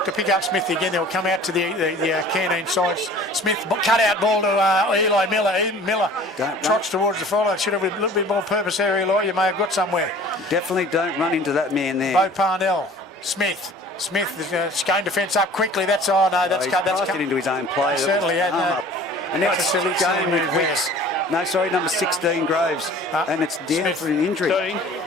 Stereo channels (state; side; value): normal; both; correlation 0.47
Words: to pick up Smith again. They'll come out to the canteen side. Smith cut out ball to Eli Miller. Miller trots towards the follow. Should have a little bit more purpose there, Eli. You may have got somewhere. Definitely don't run into that man there. Bo Parnell. Smith, Scone defence up quickly. That's he's passed it into his own play. Certainly had up. And now it's silly Scone with move Wicks. No, sorry, number 16 Groves, and it's down Smith, for an injury. 13.